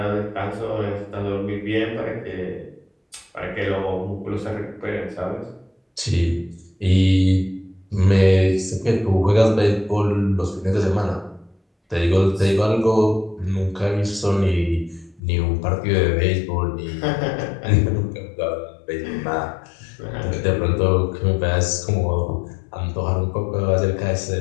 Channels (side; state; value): right; drops out; at 15.2 s